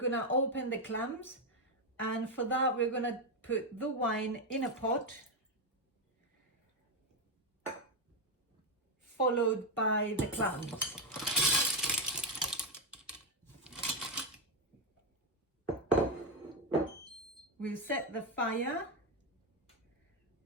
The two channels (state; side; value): normal; both; correlation 0.05